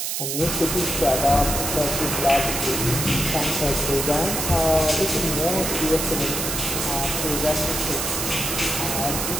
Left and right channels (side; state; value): right; noise; hiss, 2 dB below the sound